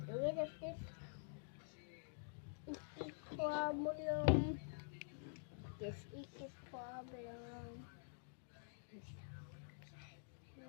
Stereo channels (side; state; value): right; silent; digital silence